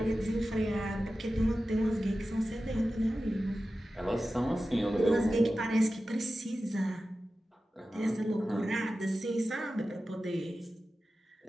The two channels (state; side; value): normal; both; correlation 0.94